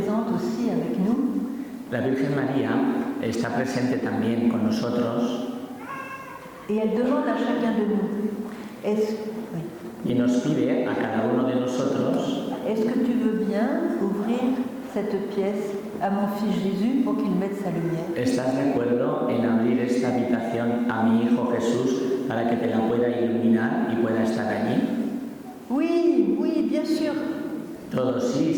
aussi avec nous. La Virgen María está presente también con nosotros. Et elle demande à chacun de nous, Y nos pide a cada uno de nosotros, est-ce que tu veux bien ouvrir cette pièce à mon fils Jésus pour qu'il mette sa lumière? ¿estás de acuerdo en abrir esta habitación a mi hijo Jesús para que te la pueda iluminar y pueda estar allí? Oui, oui, bien sûr. Todos, sí,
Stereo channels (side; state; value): both; identical; correlation 1.00